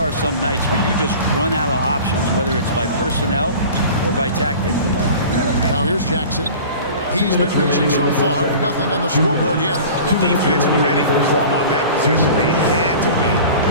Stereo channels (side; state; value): both; inverted; correlation -0.40